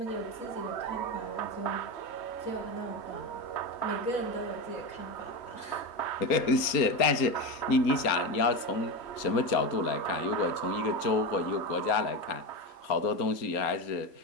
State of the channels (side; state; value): right; late; 4.3 ms